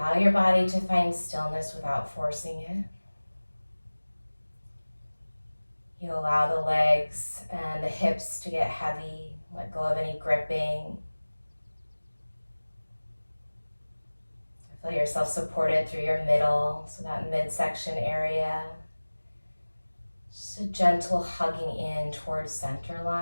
your body to find stillness without forcing it. You allow the legs and the hips to get heavy. Let go of any gripping. Feel yourself supported through your middle, so that midsection area. Just a gentle hugging in towards center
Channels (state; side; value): inverted; both; correlation -1.00